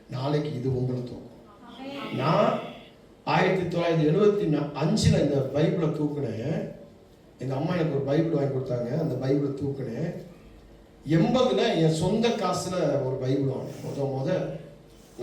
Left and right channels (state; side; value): identical; both; correlation 1.00